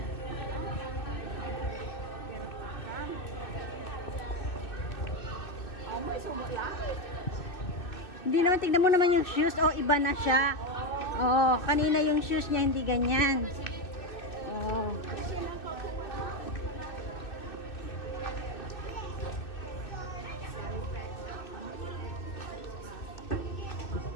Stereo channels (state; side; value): late; right; 2.6 ms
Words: Hindi naman, tignan mo naman yung shoes. Oh, iba na siya. Oh, kanina yung shoes niya hindi ganyan. Oh.